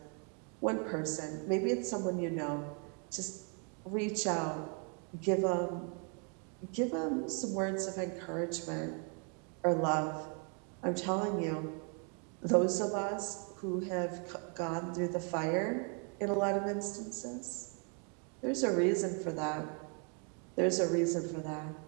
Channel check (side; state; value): left; quieter; 39.1 dB